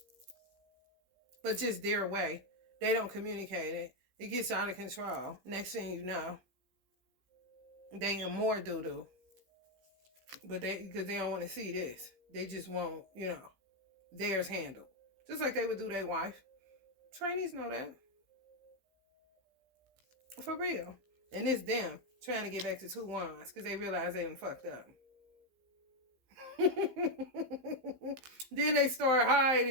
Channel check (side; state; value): left; late; 15 ms